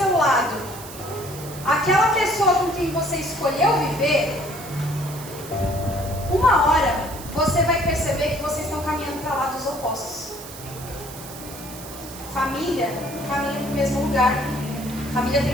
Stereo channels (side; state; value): right; noise; hiss, 14 dB below the sound